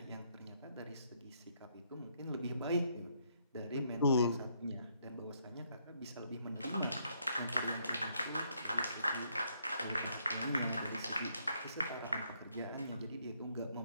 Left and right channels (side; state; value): both; inverted; correlation -0.72